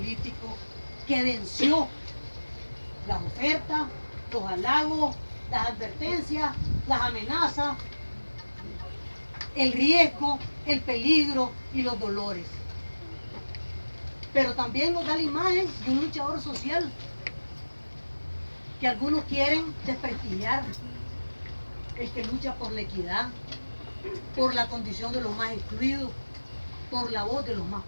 que venció las ofertas, los halagos, las advertencias, las amenazas, el riesgo, el peligro y los dolores. Pero también nos da la imagen de un luchador social que algunos quieren desprestigiar, el que lucha por la equidad, por la condición de los más excluidos, por la voz de los más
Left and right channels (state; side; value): inverted; both; correlation -1.00